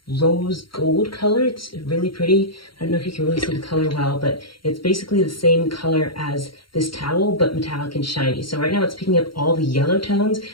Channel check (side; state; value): right; late; 0.73 ms